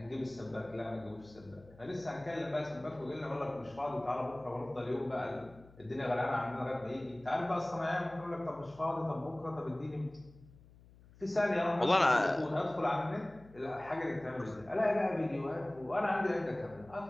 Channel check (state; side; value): noise; left; hum, 23 dB below the sound